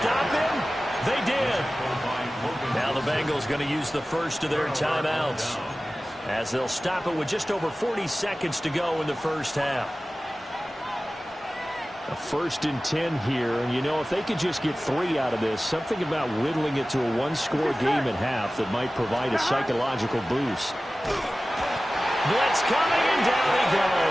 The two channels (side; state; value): both; normal; correlation 0.96